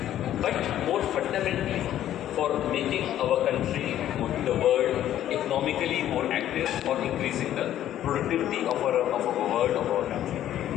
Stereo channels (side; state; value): right; quieter; 11.9 dB